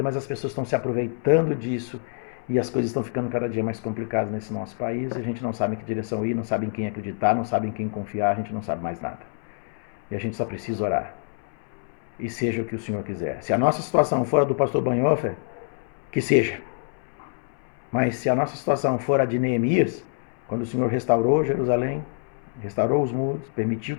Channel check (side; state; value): right; silent; 61 dB below the other